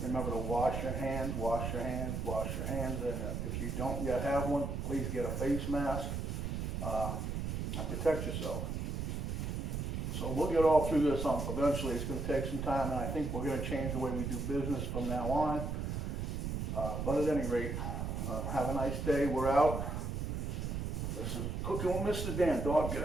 Remember to wash your hands, wash your hands, wash your hands, and if you don't yet have one, please get a face mask and protect yourself. So we'll get all through this eventually. It's going to take some time, and I think we're going to change the way we do business from now on. But at any rate, Have a nice day. We're out. This is Cooking with MrDan. Dog, get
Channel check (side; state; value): right; noise; rumble, 2 dB below the sound